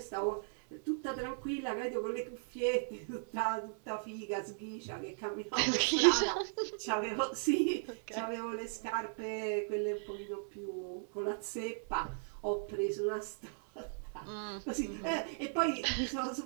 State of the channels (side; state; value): left; silent; digital silence